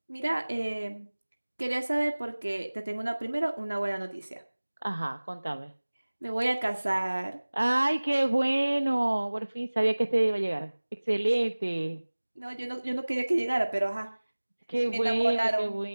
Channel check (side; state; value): both; inverted; correlation -1.00